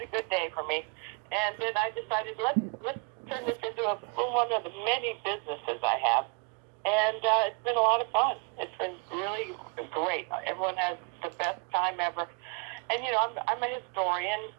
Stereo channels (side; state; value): left; quieter; 31.3 dB